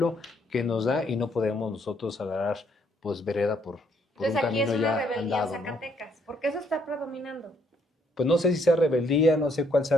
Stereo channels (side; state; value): both; normal; correlation 0.69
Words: que nos da y no podemos nosotros agarrar pues vereda por Entonces, un aquí es camino una ya rebeldía andado, en ¿no? Zacatecas, porque eso está predominando. Pues no sé si sea rebeldía, no sé cuál